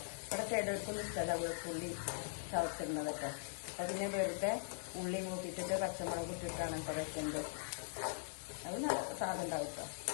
ഇവിടെ ചിലർക്കൊന്നും ഇഷ്ടമല്ല വെളുത്തുള്ളി ചവച്ചിടുന്നതൊക്കെ. അപ്പം പിന്നെ വെറുതെ ഉള്ളി മൂപ്പിച്ചിട്ട് പച്ചമുളക് ഇട്ടിട്ടാണ് ഇപ്പോൾ വെക്കുന്നത്. അത് നല്ല സാധനം ഉണ്ടാവും കേട്ടോ.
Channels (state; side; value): silent; right; digital silence